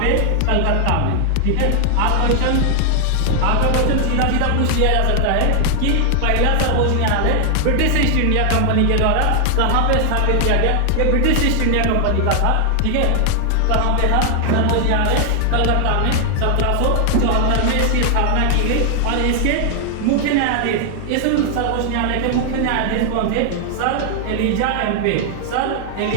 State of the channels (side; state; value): both; different; correlation 0.00